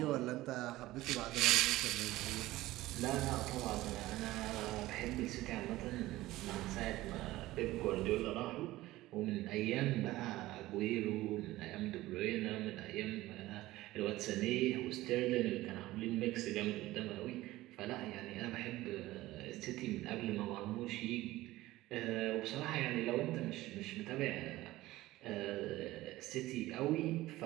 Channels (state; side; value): quieter; left; 17.3 dB